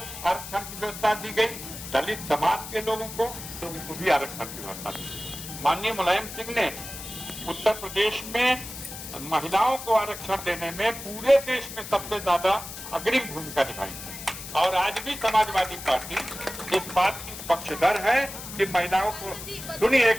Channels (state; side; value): noise; left; hiss, 11 dB below the sound